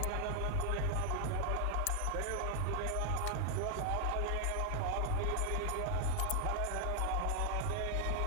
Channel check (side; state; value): both; different; correlation 0.00